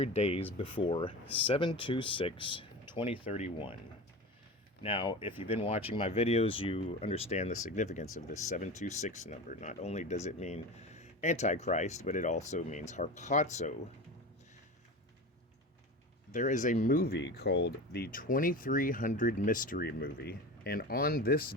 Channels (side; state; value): both; normal; correlation 0.29